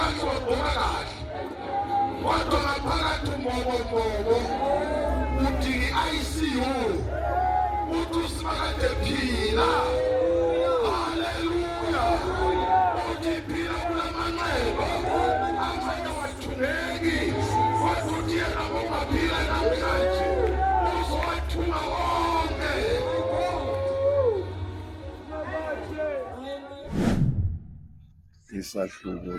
ngibona kahle kodwa ngaphakathi umbobo uthi ICU uthi usimakade phila haleluya uthi phila kulamanxeba amanye wathuleki wathi yena ngomaphila namhlanje uzowathuma wonke. Isahluko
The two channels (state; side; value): identical; both; correlation 1.00